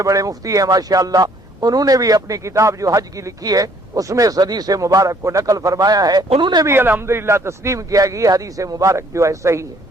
بڑے مفتی ہیں ماشاءاللہ، انہوں نے بھی اپنی کتاب جو حج کی لکھی ہے اس میں اس حدیث مبارک کو نقل فرمایا ہے، انہوں نے بھی الحمدللہ تسلیم کیا کہ یہ حدیث مبارک جو ہے صحیح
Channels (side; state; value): both; normal; correlation 0.62